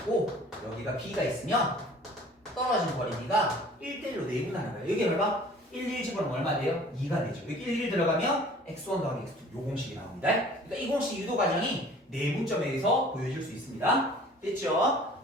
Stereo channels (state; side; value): normal; both; correlation 0.49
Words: 여기가 B가 있으면 떨어진 거리가 1대1로 내분하는 거야. 여기 봐봐 1, 1 집어넣으면 얼마 돼요? 2가 되죠. 여기 1, 1 들어가면 x1 더하기 x2 요 공식이 나옵니다. 그러니까 이 공식 유도 과정이 내분점에 의해서 보여질 수 있습니다. 됐죠?